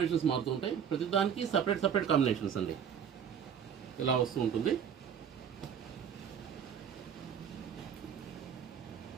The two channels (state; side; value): quieter; left; 8.0 dB